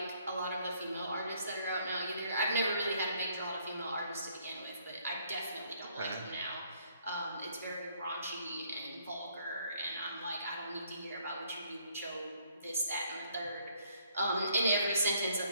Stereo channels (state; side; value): inverted; both; correlation -0.66